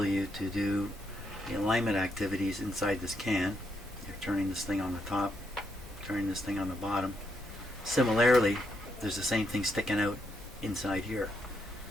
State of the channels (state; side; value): normal; both; correlation 0.78